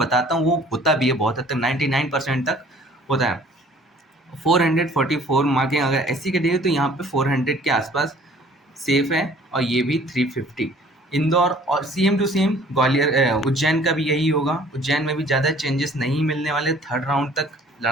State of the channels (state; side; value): normal; both; correlation 0.54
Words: हूँ वो होता भी है बहुत हद तक, 99% तक होता है। 444 मार्किंग अगर एससी के दिए तो यहाँ पे 400 के आसपास सेफ है। और ये भी 350। इंदौर और same to same Gwalior, Ujjain का भी यही होगा। उज्जैन में भी ज़्यादा चेंजेस नहीं मिलने वाले, थर्ड राउंड तक